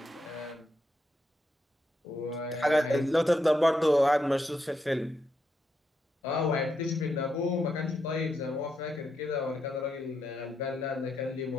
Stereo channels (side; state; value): both; normal; correlation 0.82